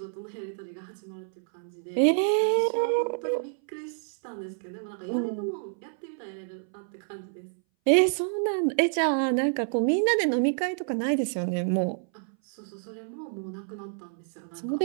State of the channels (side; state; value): left; silent; 59 dB below the other